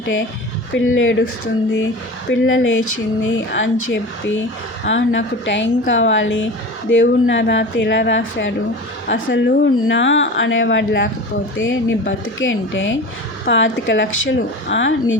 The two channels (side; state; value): both; normal; correlation 0.32